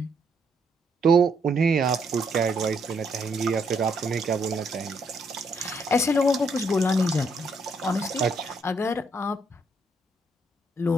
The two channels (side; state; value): both; normal; correlation 0.73